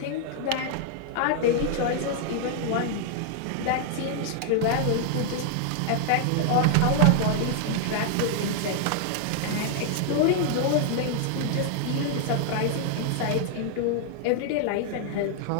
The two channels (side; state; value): both; different; correlation 0.00